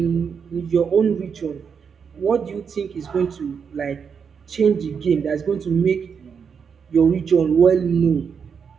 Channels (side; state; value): left; quieter; 6.5 dB